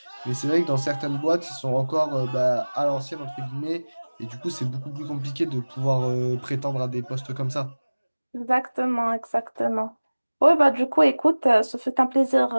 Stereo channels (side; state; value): both; inverted; correlation -1.00